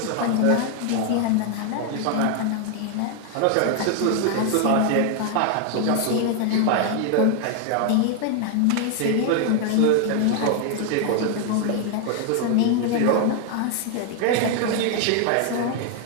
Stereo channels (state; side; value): different; both; correlation 0.00